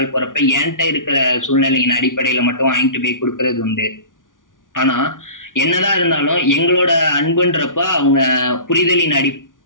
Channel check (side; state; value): right; late; 0.88 ms